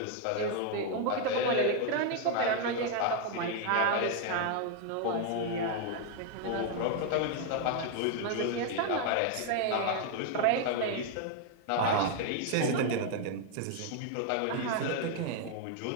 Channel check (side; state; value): both; different; correlation 0.00